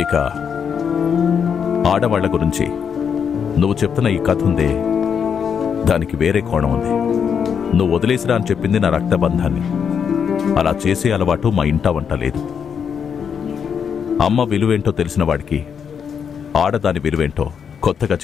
ఇక ఆడవాళ్ల గురించి నువ్వు చెప్తున్న ఈ కథ ఉందే, దానికి వేరే కోణం ఉంది. నువ్వు వదిలేసిరా అని చెప్పింది నా రక్తబంధాన్ని. అలా చేసే అలవాటు మా ఇంట వంట లేదు. అమ్మ విలువేంటో తెలిసిన వాడికి ఆడదాని విలువేంటో కొత్తగా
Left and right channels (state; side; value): quieter; right; 7.2 dB